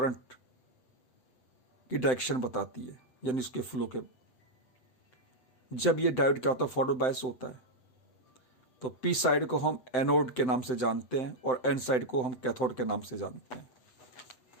की डायरेक्शन बताती है, यानी उसके फ्लो के। जब ये डायोड क्या होता है, फॉरवर्ड बायस होता है, तो पी साइड को हम एनोड के नाम से जानते हैं और एन साइड को हम कैथोड के नाम से जानते हैं।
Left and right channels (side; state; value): right; late; 7.8 ms